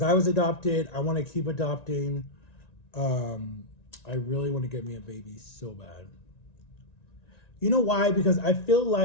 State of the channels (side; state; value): right; late; 1.9 ms